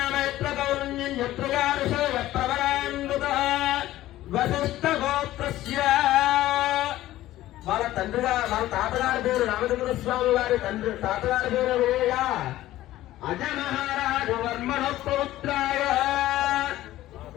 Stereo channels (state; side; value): quieter; right; 15.0 dB